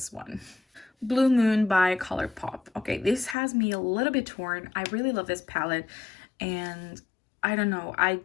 one. Blue Moon by ColourPop. Okay, this has me a little bit torn. I really love this palette, and I don't know,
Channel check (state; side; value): drops out; right; at 3.4 s